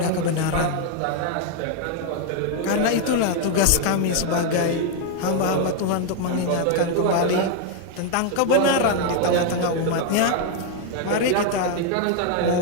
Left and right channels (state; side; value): different; both; correlation 0.00